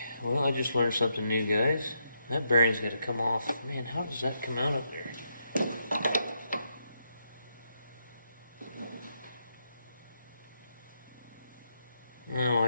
Well, I just learned something new, guys. That bearing's got to come off. Man, how does that come out up there? Oh,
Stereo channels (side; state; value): both; inverted; correlation -0.81